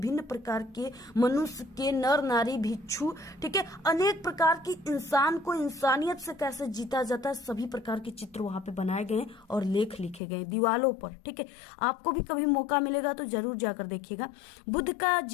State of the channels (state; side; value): drops out; right; at 10.2 s